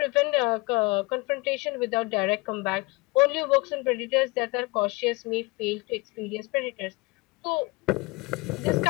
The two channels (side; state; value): right; quieter; 25.1 dB